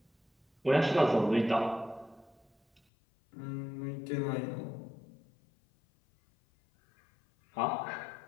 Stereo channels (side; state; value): right; drops out; at 2.8 s